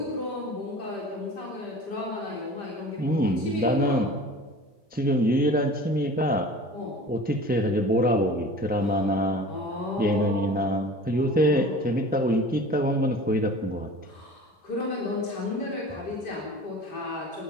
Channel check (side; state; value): both; normal; correlation 0.40